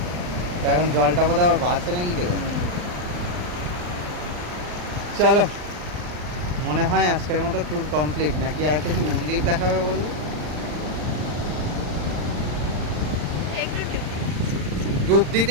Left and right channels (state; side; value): late; left; 40 ms